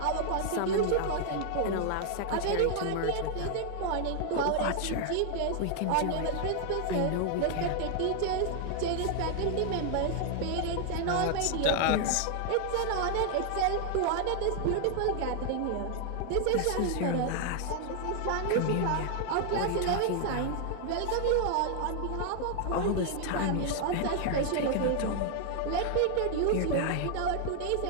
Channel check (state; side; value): different; both; correlation 0.00